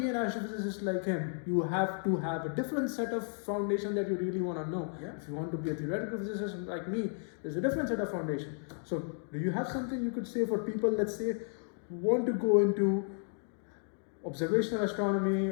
an astrophysicist like him, you have to have a different set of foundation that you really want to know. Yeah. If you want to be a theoretical physicist like me, there's a different set of foundation. So do you have something you could say for people, let's say, who want to go into observational astronomy,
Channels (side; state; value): right; silent; 56 dB below the other